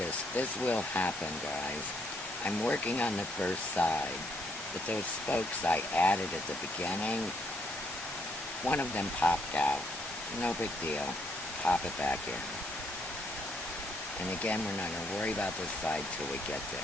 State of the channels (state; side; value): normal; both; correlation 0.72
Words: this will happen, guys. I'm working on the first side, but those spokes I added at the beginning, one of them popped out. No big deal. Pop it back in. And again, we're not going to worry about this side till we get